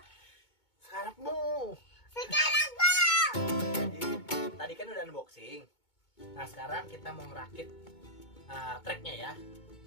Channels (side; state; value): right; late; 2.2 ms